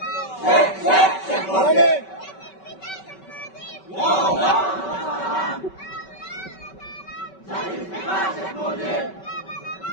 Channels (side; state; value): right; late; 5.3 ms